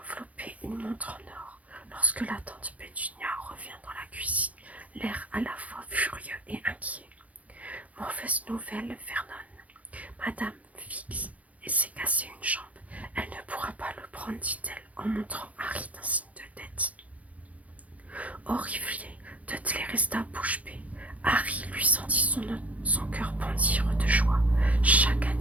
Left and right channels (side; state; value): left; late; 0.067 ms